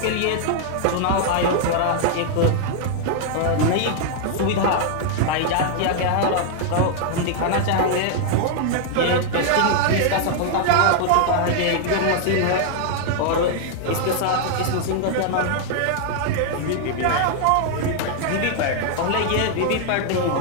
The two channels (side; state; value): both; different; correlation 0.00